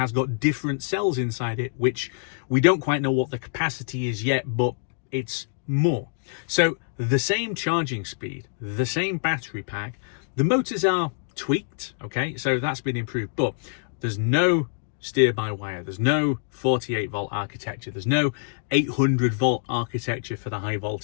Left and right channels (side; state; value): right; silent; digital silence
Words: got different cells inside it, which we don't quite know what the capacity is yet, but it's more. So the same charging speed, the same battery pack, the motors are tweaked, okay, so that's been improved, but there's no steer-by-wire, there's no 48-volt architecture, there's no 800-volt architecture for the